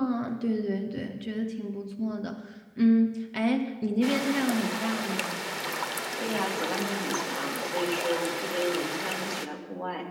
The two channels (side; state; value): both; identical; correlation 1.00